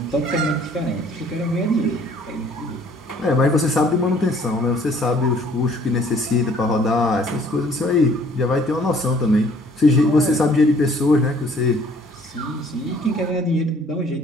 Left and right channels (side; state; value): both; normal; correlation 0.58